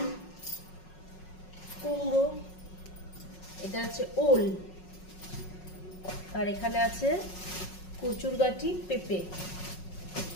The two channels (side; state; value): right; late; 5.4 ms